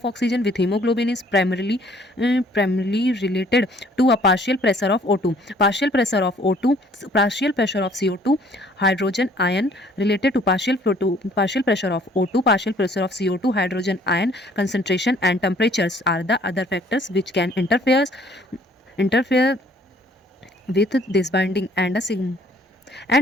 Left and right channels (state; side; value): normal; both; correlation 0.58